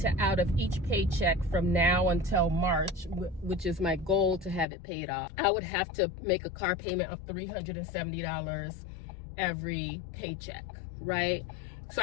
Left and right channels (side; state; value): right; drops out; at 4.7 s